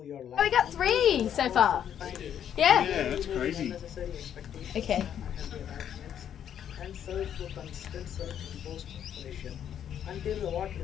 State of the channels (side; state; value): right; quieter; 9.5 dB